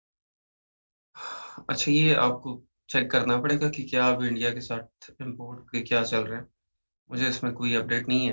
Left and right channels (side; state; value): both; inverted; correlation -1.00